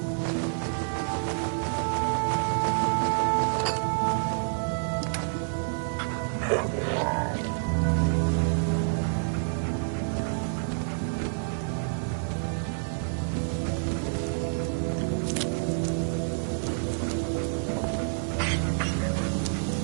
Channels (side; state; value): left; silent; digital silence